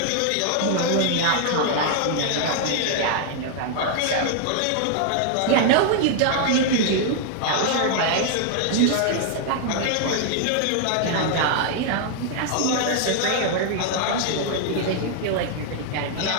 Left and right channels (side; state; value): both; different; correlation 0.00